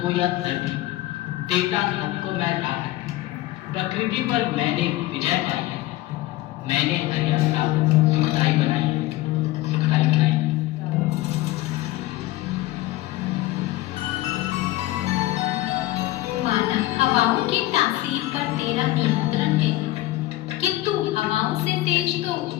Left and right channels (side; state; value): right; quieter; 17.0 dB